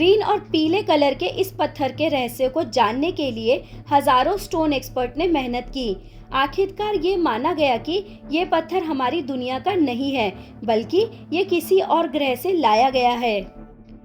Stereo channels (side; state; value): both; identical; correlation 1.00